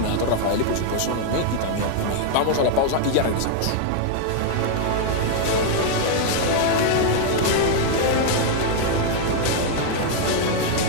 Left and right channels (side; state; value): both; different; correlation 0.00